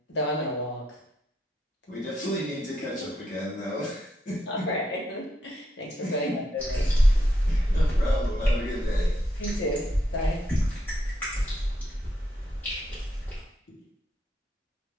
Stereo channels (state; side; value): normal; both; correlation 0.79